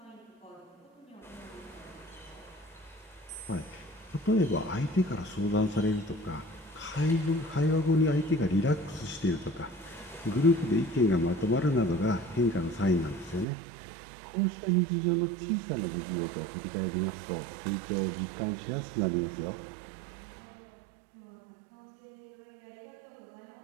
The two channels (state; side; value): drops out; left; at 13.5 s